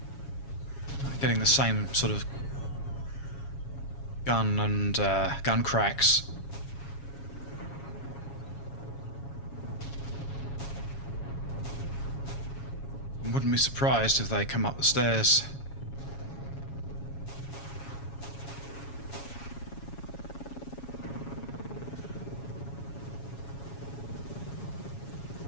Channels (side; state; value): right; late; 7.2 ms